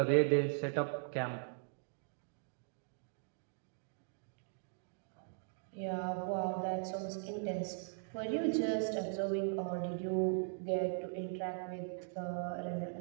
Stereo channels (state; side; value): silent; left; digital silence